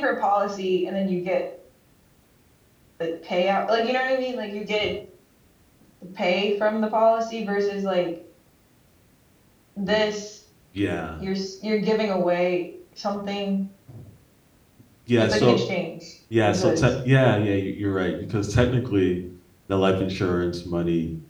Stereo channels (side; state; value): both; identical; correlation 1.00